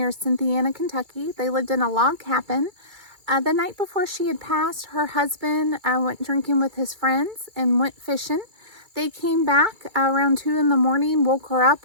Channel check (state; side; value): late; left; 2.3 ms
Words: Cynthiana, Kentucky. They lived in a log cabin. The night before she had passed, her husband went drinking with his friends and went fishing. They came back around 2 in the morning, woke her up,